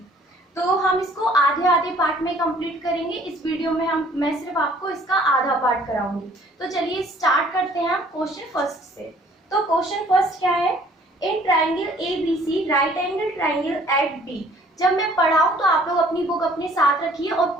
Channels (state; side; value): normal; both; correlation 0.56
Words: तो हम इसको आधे आधे पार्ट में कंप्लीट करेंगे। इस वीडियो में मैं सिर्फ आपको इसका आधा पार्ट कराऊंगी। तो चलिए स्टार्ट करते हैं हम क्वेश्चन फर्स्ट से। तो क्वेश्चन फर्स्ट क्या है? In triangle ABC right angle triangle at B। जब मैं पढ़ाऊं तो आप लोग अपनी बुक अपने साथ रखिए और